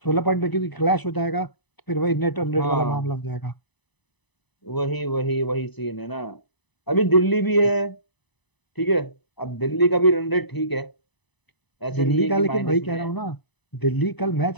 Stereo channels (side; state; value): right; late; 1.0 ms